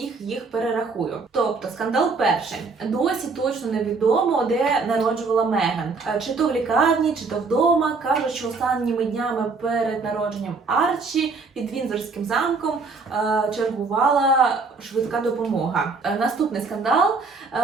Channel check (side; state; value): left; quieter; 4.3 dB